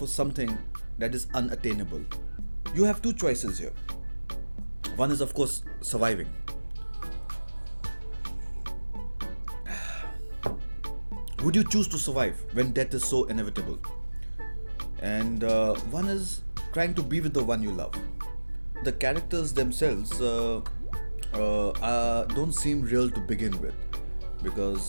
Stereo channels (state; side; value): inverted; both; correlation -1.00